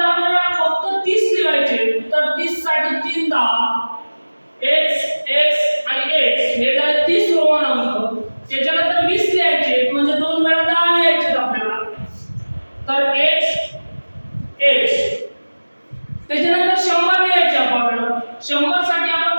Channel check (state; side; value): inverted; both; correlation -1.00